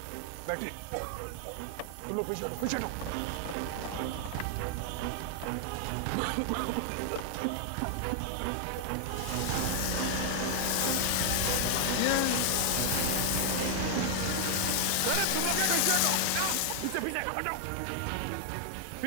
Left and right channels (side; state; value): both; different; correlation 0.00